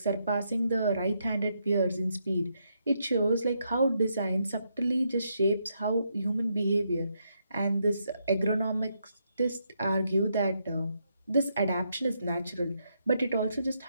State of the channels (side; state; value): both; inverted; correlation -0.79